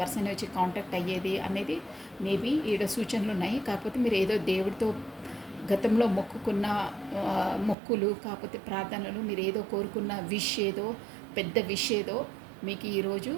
పర్సన్ వచ్చి కాంటాక్ట్ అయ్యేది అనేది మేబీ ఈడ సూచనలు ఉన్నాయి. కాకపోతే మీరు ఏదో దేవుడితో గతంలో మొక్కుకున్న మొక్కులు, కాకపోతే ప్రార్థనలు, మీరు ఏదో కోరుకున్న విష్ ఏదో పెద్ద విష్ ఏదో మీకు ఈరోజు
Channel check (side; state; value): left; drops out; at 7.8 s